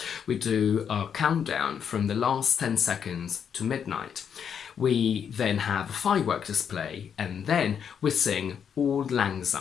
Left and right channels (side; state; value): right; quieter; 7.7 dB